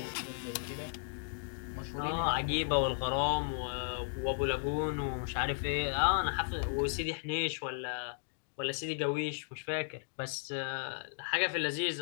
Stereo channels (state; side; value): silent; right; digital silence